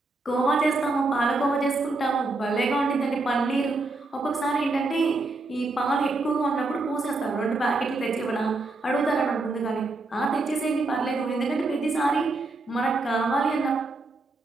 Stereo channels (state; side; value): quieter; left; 3.3 dB